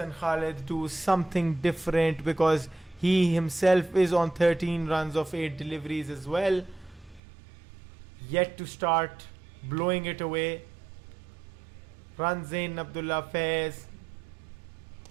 Khalid do something different, because he himself is on 13 runs of 8 deliveries as well, yet to start blowing it away. Runs in Abdullah Faiz.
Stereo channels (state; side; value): drops out; left; at 7.2 s